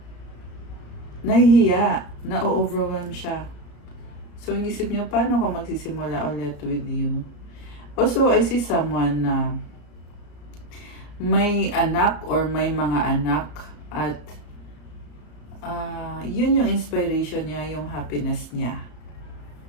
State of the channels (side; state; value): right; late; 34 ms